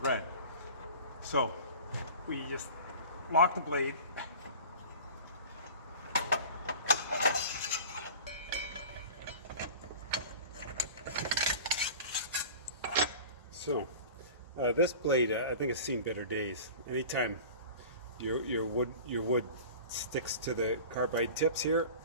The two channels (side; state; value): both; inverted; correlation -0.38